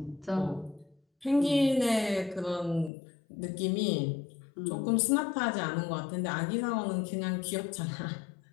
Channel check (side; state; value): right; drops out; at 2.9 s